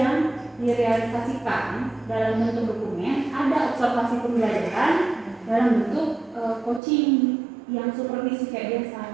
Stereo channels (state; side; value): drops out; left; at 6.8 s